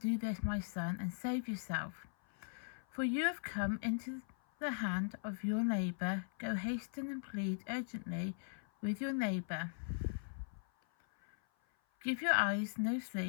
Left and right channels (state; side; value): silent; right; 51 dB below the other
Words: this, my son, and save yourself. For you have come into the hand of your neighbour. Go hasten and plead urgently with your neighbour. Give your eyes no